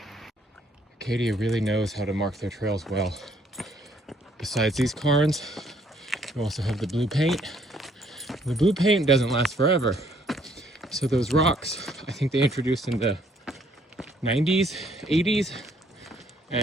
Acadia really knows how to mark their trails well. Besides these cairns, you also have the blue paint. The blue paint doesn't last forever. So those rocks, I think they introduced in the 90s, 80s,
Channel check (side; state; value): both; normal; correlation 0.66